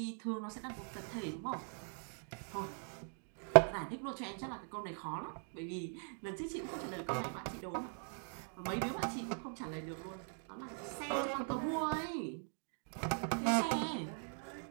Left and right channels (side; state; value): left; silent; 51 dB below the other